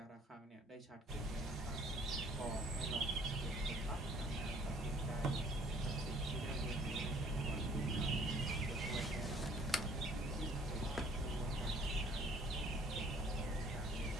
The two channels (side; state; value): both; normal; correlation 0.58